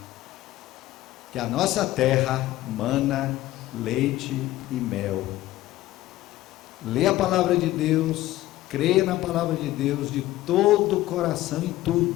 que a nossa terra mana leite e mel. Lê a palavra de Deus, creia na palavra de Deus de todo o coração em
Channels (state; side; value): quieter; right; 15.8 dB